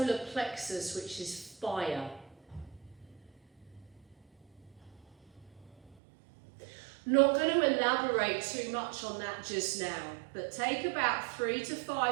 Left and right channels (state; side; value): drops out; left; at 6.0 s